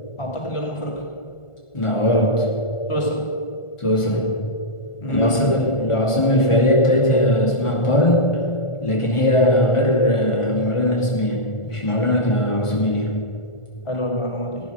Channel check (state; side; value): late; right; 1.4 ms